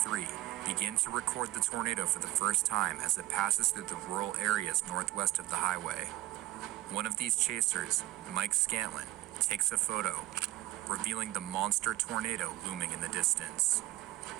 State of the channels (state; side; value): quieter; left; 16.2 dB